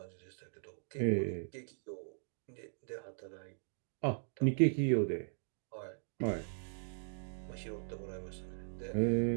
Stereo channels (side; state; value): left; silent; digital silence